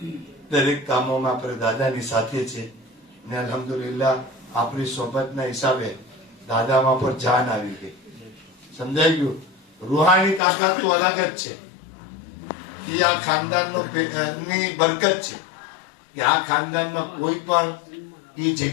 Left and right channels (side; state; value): right; drops out; at 10.4 s